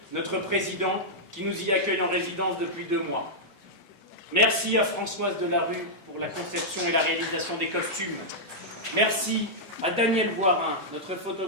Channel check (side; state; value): both; normal; correlation -0.08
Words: notre président, qui nous y accueille en résidence depuis 2 mois. Merci à Françoise Delarue pour la conception et la réalisation des costumes. Merci à Daniel Voirin, notre